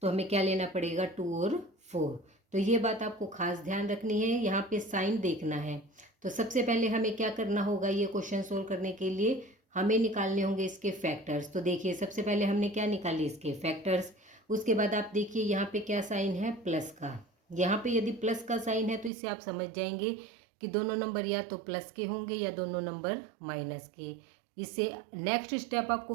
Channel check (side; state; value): left; drops out; at 19.1 s